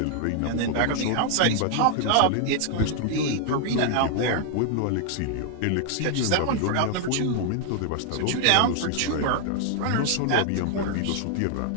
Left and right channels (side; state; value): both; different; correlation 0.00